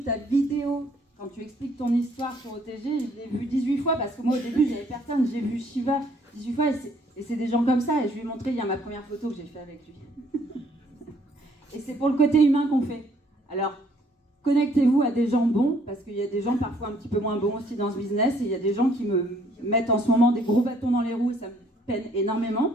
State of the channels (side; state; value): both; normal; correlation 0.64